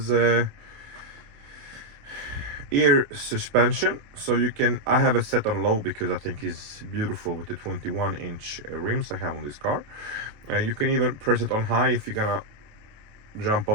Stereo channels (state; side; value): late; left; 28 ms